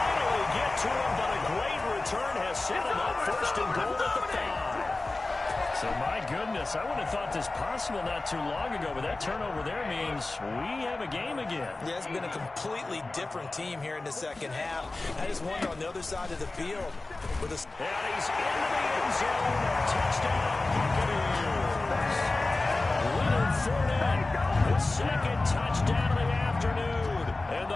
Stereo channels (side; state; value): right; quieter; 3.2 dB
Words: get to him, but a great return has set him up 1st and goal at the 5. So, my goodness, I wouldn't have thought this possible not too long ago, but that turnover there means we have a game again. Yeah, it's been a completely different team here in the 2nd half. I just wonder on the other side of the field. And he's into the end zone. Touchdown, Buccaneers. Leonard Fournette, his 2nd touchdown of the afternoon. And